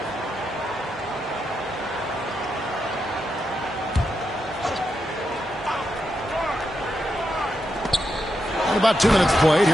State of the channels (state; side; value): normal; both; correlation 0.84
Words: And about 2 minutes played